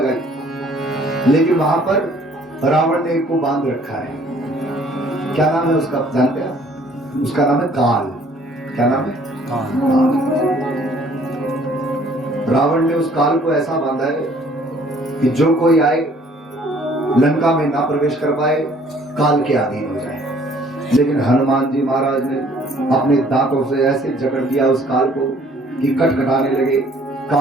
लेकिन वहां पर रावण ने एक को बांध रखा है। क्या नाम है उसका, जानते हैं? उसका नाम है काल। क्या नाम है? रावण ने उस काल को ऐसा बांधा है कि जो कोई आए लंका में ना प्रवेश कर पाए, काल के अधीन हो जाए। लेकिन हनुमान जी महाराज ने अपने दांतों से ऐसे जकड़ दिया उस काल को कि कटकटाने लगे।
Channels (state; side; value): normal; both; correlation 0.58